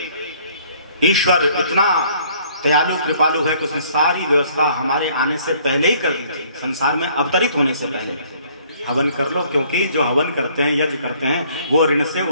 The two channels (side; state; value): both; inverted; correlation -0.59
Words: ईश्वर इतना दयालु कृपालु है कि उसने सारी व्यवस्था हमारे आने से पहले ही कर दी थी। संसार में अवतरित होने से पहले हवन कर लो, क्योंकि जो हवन करते हैं, यज्ञ करते हैं, वो ऋण से